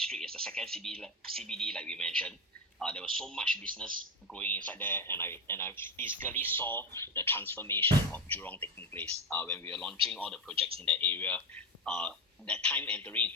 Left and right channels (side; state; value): both; normal; correlation 0.15